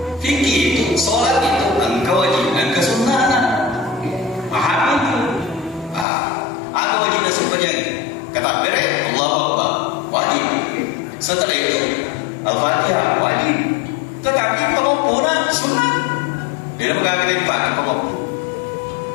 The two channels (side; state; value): right; drops out; at 6.1 s